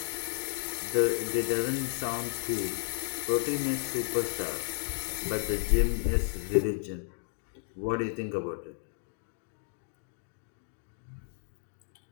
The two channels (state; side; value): silent; right; digital silence